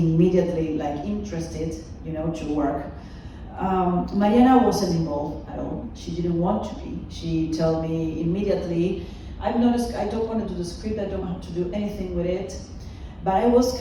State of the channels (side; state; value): both; identical; correlation 1.00